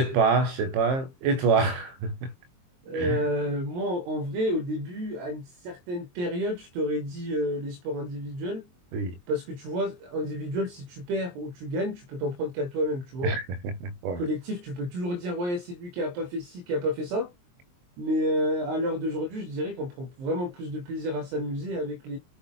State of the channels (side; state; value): left; late; 23 ms